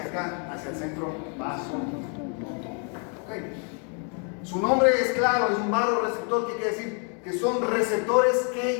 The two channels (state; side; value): quieter; right; 39.7 dB